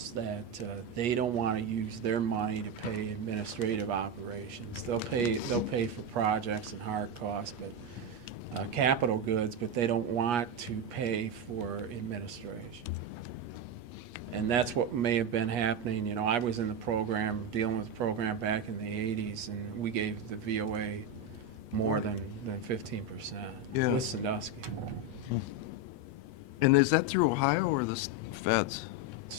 that they don't want to use their money to pay administrative operations. They'll pay for projects and hard costs, but capital goods, but they don't want to pay for administration. And that's what may have been happening. You know, I was in the program, dealing with the program back in the 80s, and we gave the VOA more than 15% Yeah. with Sandusky. And is that through Ohio or the feds?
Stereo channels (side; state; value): left; late; 8.3 ms